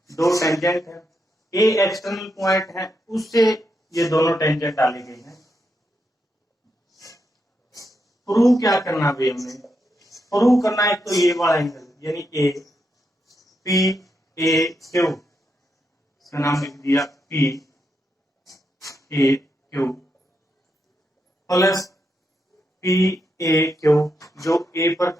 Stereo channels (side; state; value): both; normal; correlation 0.83